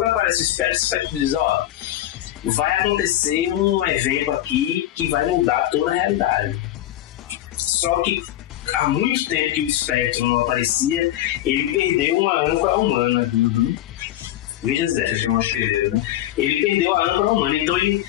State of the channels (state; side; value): quieter; right; 13.6 dB